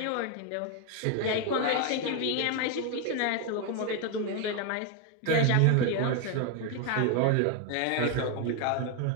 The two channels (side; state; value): both; different; correlation 0.01